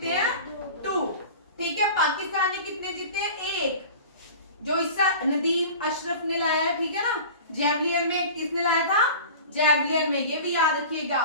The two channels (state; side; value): inverted; both; correlation -0.37